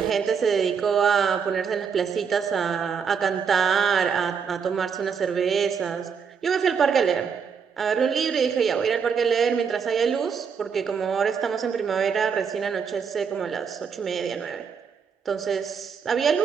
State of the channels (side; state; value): left; quieter; 6.5 dB